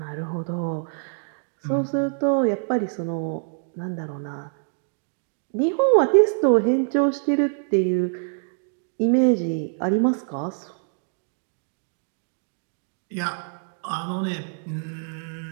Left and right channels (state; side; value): silent; left; 62 dB below the other